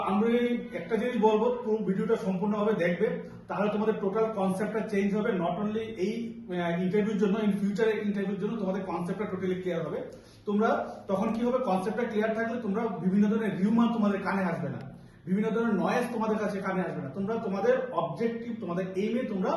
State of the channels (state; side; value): identical; both; correlation 1.00